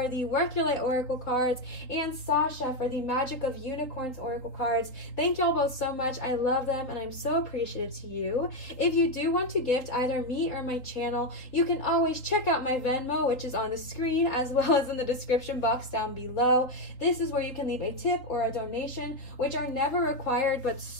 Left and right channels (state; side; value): late; right; 3.9 ms